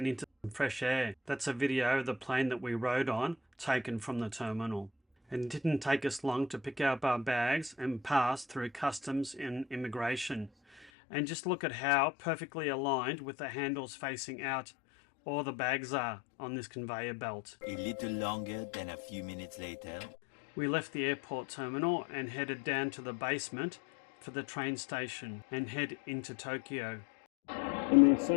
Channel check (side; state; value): right; drops out; at 10.9 s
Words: into some fresh air. That's a video of the plane that we rode on, taken from the terminal. It didn't take us long to pick up our bags and pass through customs and immigration. And just look at how perfectly aligned with the handles facing out all the bags are on this conveyor belt. A little longer than a few minutes later. We left the airport terminal and headed down to the basement for the train station and head into Tokyo. And there's